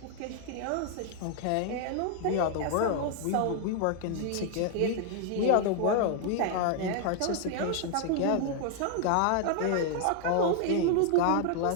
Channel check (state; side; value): different; both; correlation 0.00